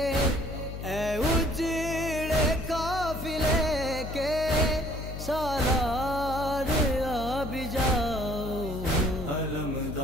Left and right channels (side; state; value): left; noise; hum, 8 dB below the sound